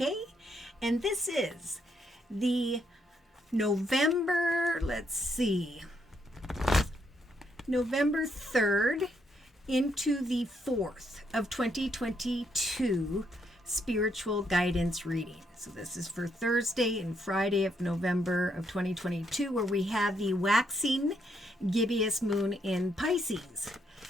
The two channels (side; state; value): both; normal; correlation 0.75